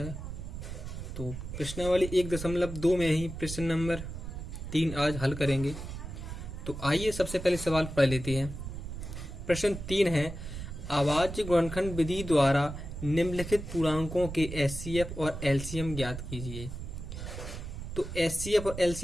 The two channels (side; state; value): right; noise; rumble, 8 dB below the sound